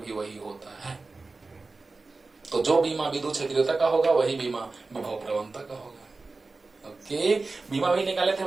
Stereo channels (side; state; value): left; quieter; 3.7 dB